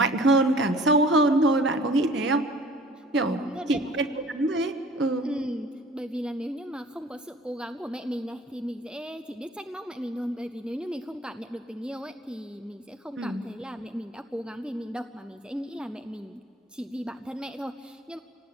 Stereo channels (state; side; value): normal; both; correlation 0.50